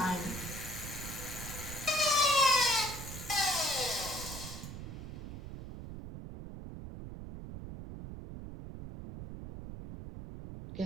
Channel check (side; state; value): right; noise; rumble, 9 dB below the sound